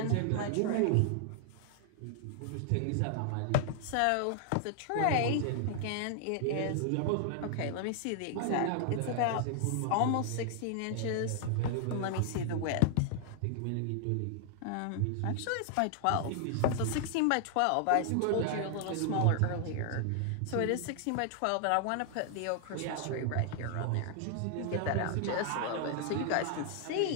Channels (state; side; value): different; both; correlation 0.00